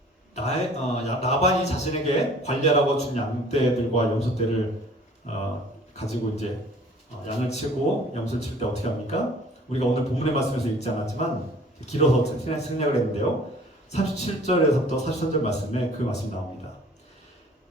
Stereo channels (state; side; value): normal; both; correlation 0.51